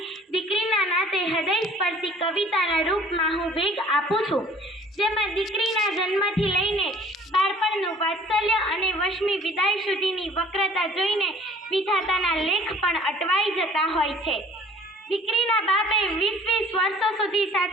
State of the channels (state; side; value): normal; both; correlation 0.52